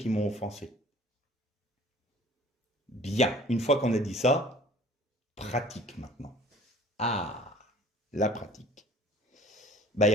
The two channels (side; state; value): both; normal; correlation 0.49